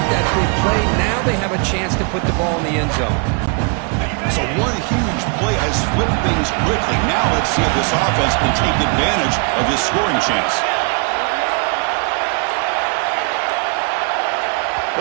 that big play, now they have a chance to put the ball in the end zone. So one huge play has flipped things quickly. Now let's see if this offense can take advantage of this scoring chance.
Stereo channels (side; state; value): left; quieter; 35.5 dB